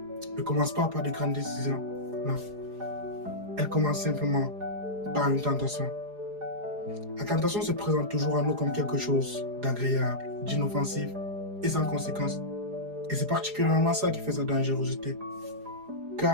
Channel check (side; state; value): left; late; 4.8 ms